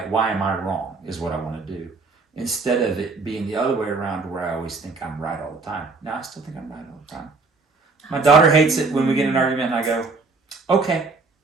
Why am I wrong? Is what I want to do, instead of it being the other way around, where I always think I'm right all the time. Now I still think I'm right all the time. My daughter hates it when we get in an argument, and I go, okay,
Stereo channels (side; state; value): left; quieter; 3.9 dB